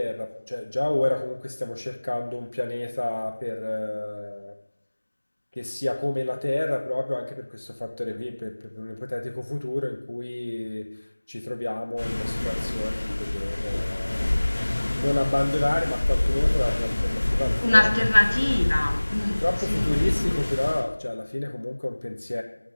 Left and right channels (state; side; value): inverted; both; correlation -1.00